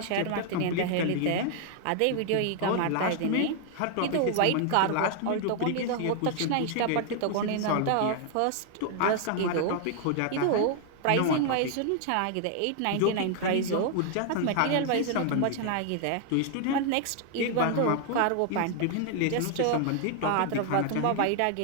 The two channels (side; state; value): both; different; correlation 0.00